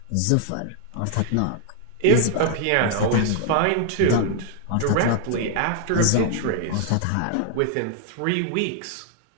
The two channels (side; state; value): both; different; correlation 0.00